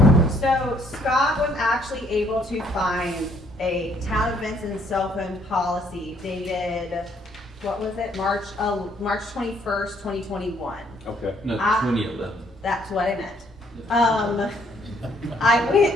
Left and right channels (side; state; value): both; normal; correlation 0.66